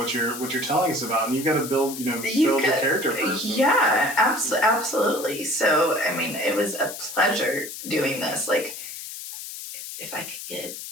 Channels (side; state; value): left; noise; hiss, 10 dB below the sound